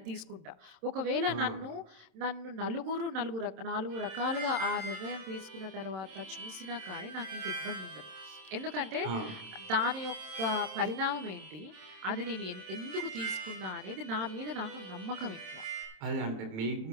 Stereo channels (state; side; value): late; left; 27 ms